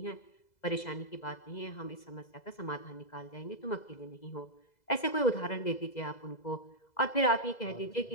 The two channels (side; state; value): right; late; 2.0 ms